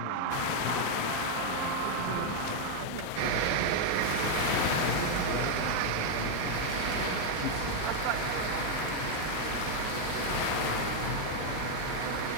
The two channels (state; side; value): different; both; correlation 0.00